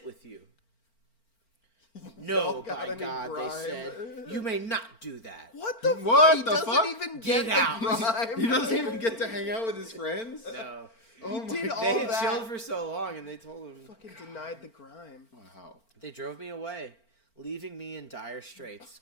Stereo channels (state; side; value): late; right; 4.4 ms